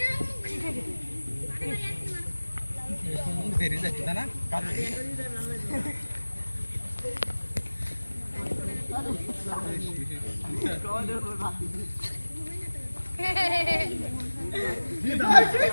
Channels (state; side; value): inverted; both; correlation -1.00